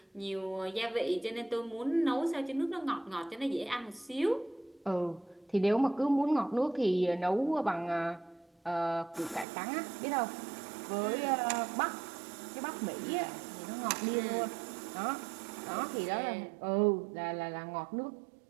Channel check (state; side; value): drops out; left; at 9.5 s